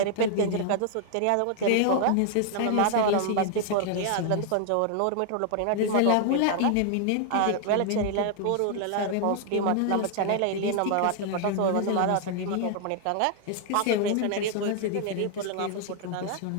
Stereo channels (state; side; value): different; both; correlation 0.00